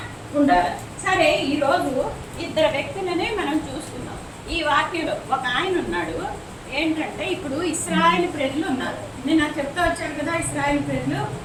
ఉండాలి. సరే, ఈరోజు 2 వ్యక్తులనే మనం చూస్తున్నాం ఈ వాక్యంలో. ఒక ఆయన ఉన్నాడు, ఏంటంటే ఇప్పుడు ఇశ్రాయేలు ప్రజలు ఉన్నారు. నేను నాకు చెప్తా వచ్చాను కదా, ఇశ్రాయేలు ప్రజలు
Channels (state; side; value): identical; both; correlation 1.00